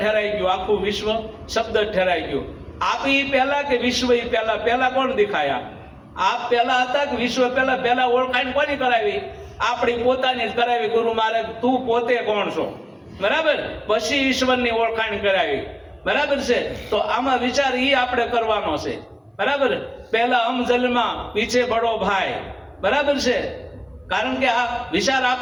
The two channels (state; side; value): identical; both; correlation 1.00